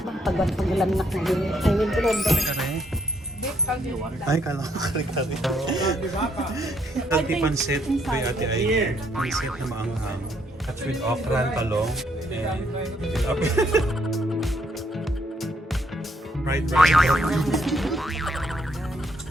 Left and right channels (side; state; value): both; normal; correlation 0.72